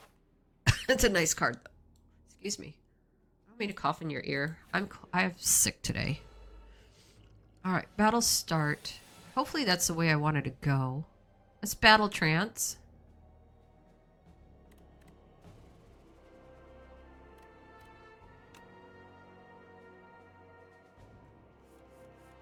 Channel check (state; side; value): identical; both; correlation 1.00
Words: It's a nice card, though. Excuse me. I don't mean to cough in your ear. I'm sick today. All right, battle start. Hopefully that's the way I wanted to go. Let's battle trance.